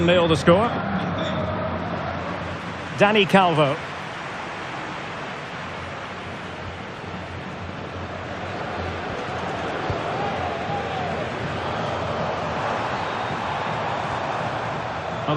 the score. Dani Calvo. Well,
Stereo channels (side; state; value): both; identical; correlation 1.00